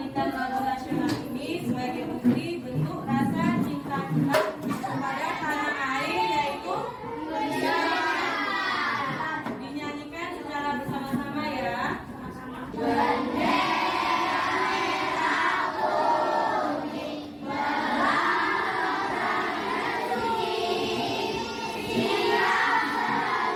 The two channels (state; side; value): identical; both; correlation 1.00